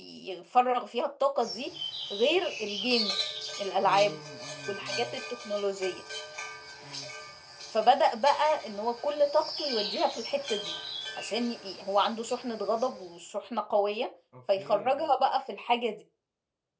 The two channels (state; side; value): identical; both; correlation 1.00